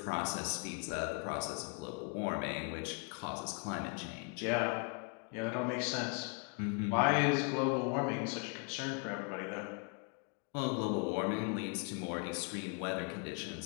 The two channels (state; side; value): quieter; right; 37.7 dB